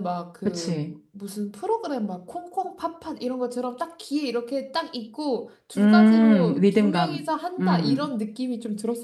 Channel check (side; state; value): both; identical; correlation 1.00